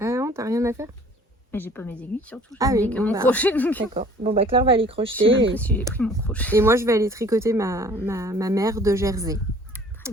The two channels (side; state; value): both; normal; correlation 0.52